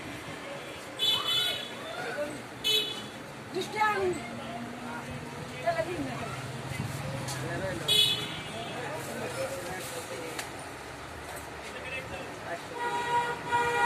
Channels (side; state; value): both; identical; correlation 1.00